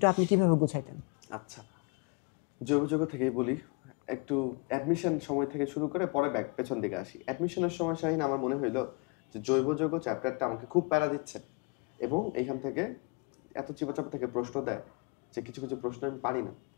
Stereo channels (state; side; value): quieter; right; 31.9 dB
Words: আপনি কীভাবে গুছাইতেন? আচ্ছা, জৈব থেকেই বলি। একটু অ্যাডমিশন সময় থেকে শুরু করে পরে পেছন দিকে আসি। অ্যাডমিশনের সময় শাহিন আমার মনে হইলো যে জৈব যৌগ চ্যাপ্টারটা আমাকে খুব প্যারা দিচ্ছে, এবং এখান থেকে এত চিপাচাপা থেকে প্রশ্ন দেয় যে কিছু কিছু প্রশ্ন আমি পারি না।